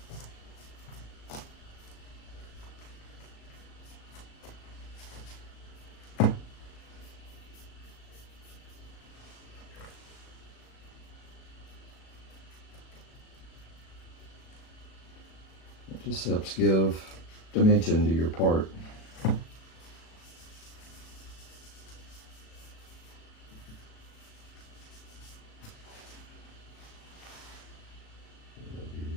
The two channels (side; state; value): right; late; 37 ms